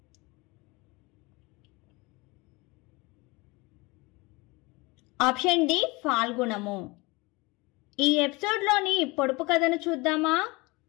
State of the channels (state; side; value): quieter; right; 24.7 dB